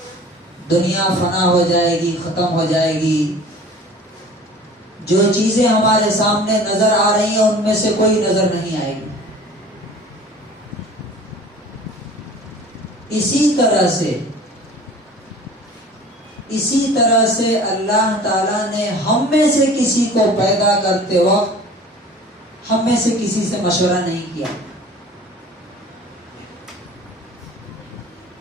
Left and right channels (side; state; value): both; normal; correlation 0.44